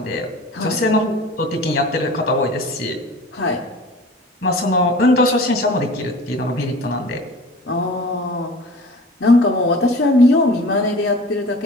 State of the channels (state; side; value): normal; both; correlation 0.41